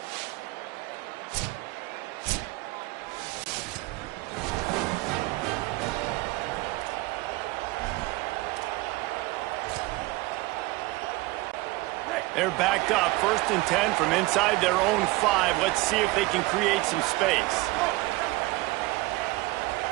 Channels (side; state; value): left; quieter; 21.1 dB